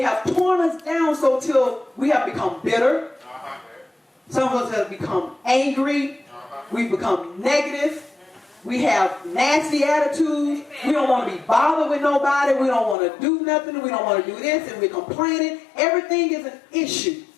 have torn us down so till we have become bitter. Some of us have become angry. We've become negative. We have nasty attitudes. We don't want to be bothered with nobody. We don't want to do nothing. We don't want to do this, and we're complaining. Everything is an issue.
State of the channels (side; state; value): right; drops out; at 13.0 s